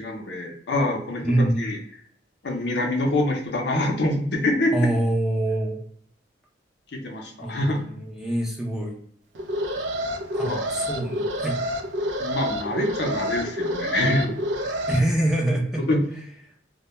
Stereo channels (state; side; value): normal; both; correlation 0.58